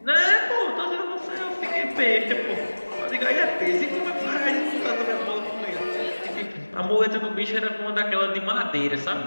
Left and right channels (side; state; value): both; inverted; correlation -1.00